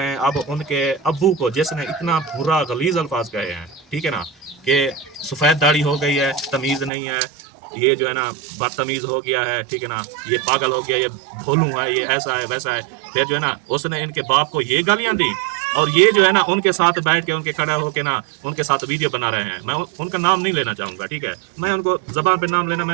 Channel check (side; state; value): left; drops out; at 6.9 s